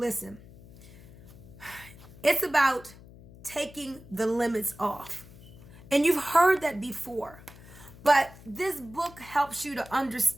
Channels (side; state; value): left; noise; hum, 20 dB below the sound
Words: it's about taking the limits off. And you've heard that before. But this book helps you to